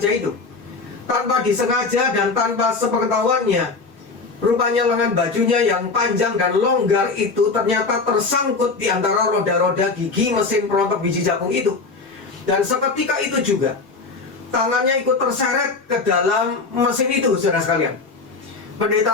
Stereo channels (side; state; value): right; quieter; 4.1 dB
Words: itu. Tanpa disengaja dan tanpa sepengetahuannya, Rupanya lengan bajunya yang panjang dan longgar itu ternyata tersangkut di antara roda-roda gigi mesin perontok biji jagung itu. Dan seketika itu juga tangannya ikut terseret ke dalam mesin itu, saudara sekalian.